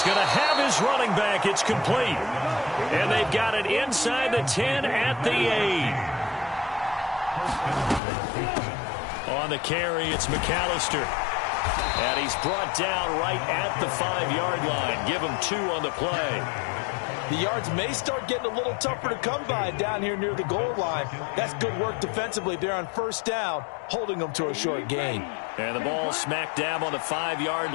going to have his running back. It's complete. And they've got it inside the 10 at the 8. On the carry, it's McAllister. And he's brought down right at the 5-yard line. Give him 2 on the play. The yards may start getting a little tougher to come by down here near the goal line. That's good work defensively there on first down, holding them to a short gain. And the ball smack dab on the 5-yard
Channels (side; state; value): right; drops out; at 8.0 s